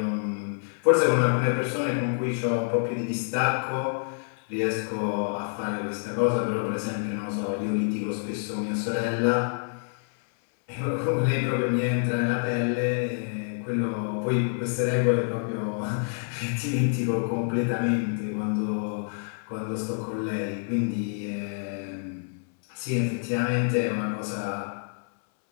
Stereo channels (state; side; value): silent; right; 60 dB below the other